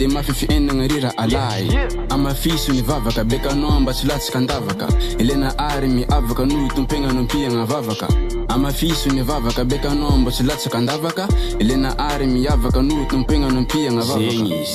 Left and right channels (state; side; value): identical; both; correlation 1.00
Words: mafy fiainagna rira alay amafiso ny vavaka bekanao mba tsy latsaka andavaka elena ary miavaka noho tompegna nompiagna vavaka amafiso ny vavaka bekanao mba tsy latsaka andavaka elena ary miavaka noho tompegna nompiagna vavaka